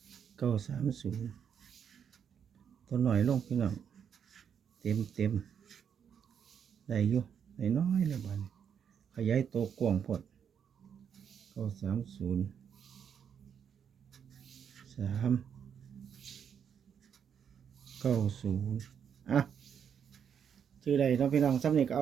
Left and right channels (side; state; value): left; quieter; 7.8 dB